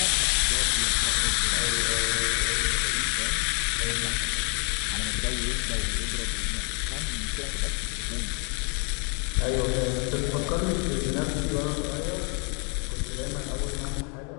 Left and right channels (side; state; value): right; quieter; 36.5 dB